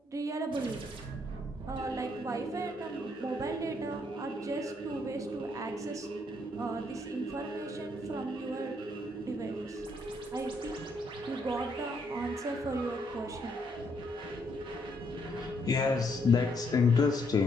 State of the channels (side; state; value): both; normal; correlation 0.73